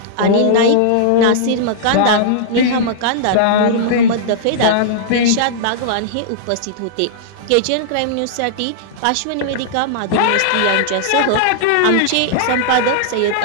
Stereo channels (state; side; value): different; both; correlation -0.02